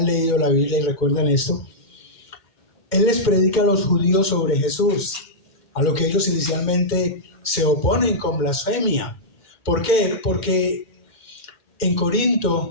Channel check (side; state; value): right; late; 2.1 ms